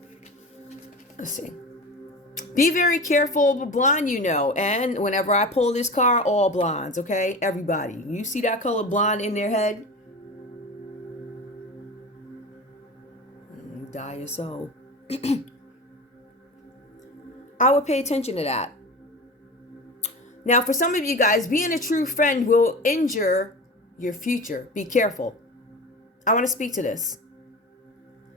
Let's see. Be very careful, blonde, and whenever I pull this card, all blondes, okay? Everybody. You see that color blonde in their head? You die your soul. I would pay attention to that. Now, for some of you guys, being a true friend will injure your future. Be careful. I want to speak to this.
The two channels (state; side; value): normal; both; correlation 0.31